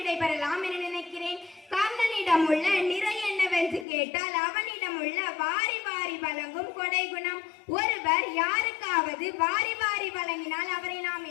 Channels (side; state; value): right; drops out; at 3.9 s